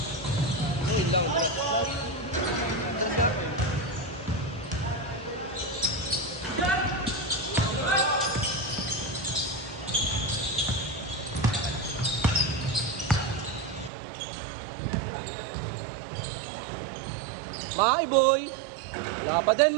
Ayun lang. Bye, boy! Wala pa din,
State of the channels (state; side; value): drops out; left; at 13.9 s